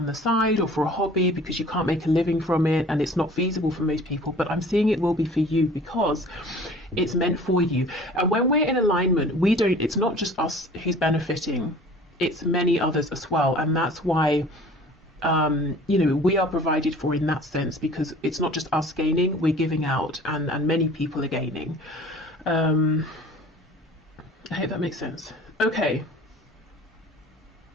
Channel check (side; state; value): both; normal; correlation 0.47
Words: the side or for a hobby, because you can't make a living from it and it's not feasible for most people. But I'm seeing it will be for you because it's meant for you. And when we're in alignment, it's not just us who's benefiting, it's many others as well. And that's why we are provided for in that sense, because it's not just us gaining, we're giving out, and many people are gaining. I hope that makes sense. Okay.